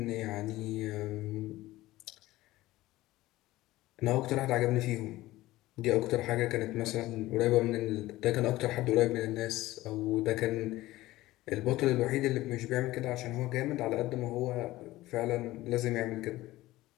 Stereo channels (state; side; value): quieter; right; 17.3 dB